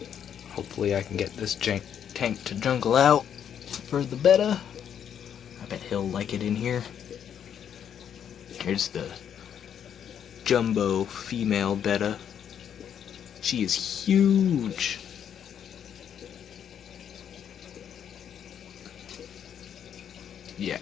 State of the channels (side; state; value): right; quieter; 8.8 dB